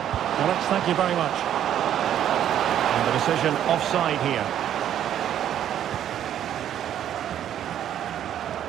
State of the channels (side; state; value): left; quieter; 10.5 dB